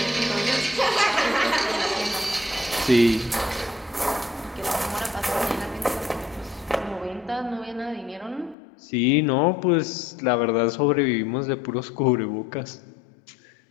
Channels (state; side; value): drops out; right; at 8.6 s